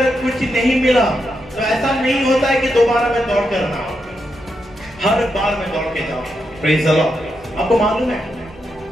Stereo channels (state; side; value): normal; both; correlation 0.83